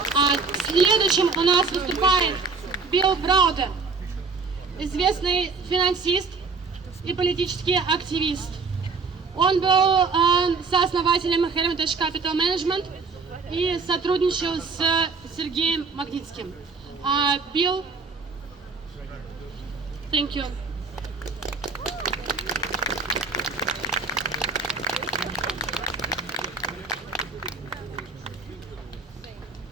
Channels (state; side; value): quieter; left; 4.6 dB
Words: Следующим у нас выступает Browder, известный финансист и политический активист. Он был сооснователем Hermitage Capital Management и сотрудничал с Сергеем Магнитским. Bill, thank you.